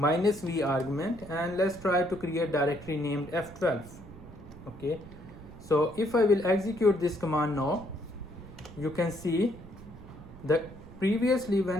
argument, and let's try to create directory named F12. Okay, So if I will execute this command now, you can see that previously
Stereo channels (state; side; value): noise; right; rumble, 17 dB below the sound